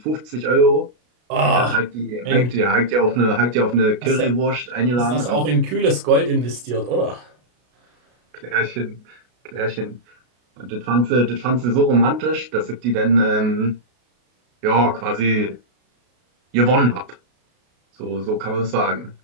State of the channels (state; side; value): late; left; 33 ms